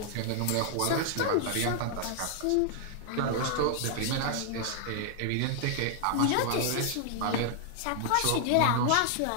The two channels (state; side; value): different; both; correlation 0.00